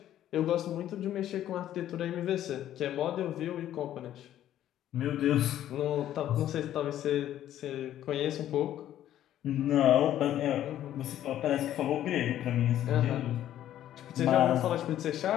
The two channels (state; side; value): quieter; right; 12.0 dB